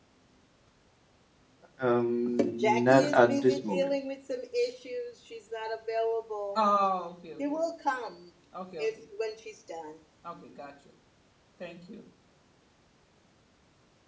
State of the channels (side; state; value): both; identical; correlation 1.00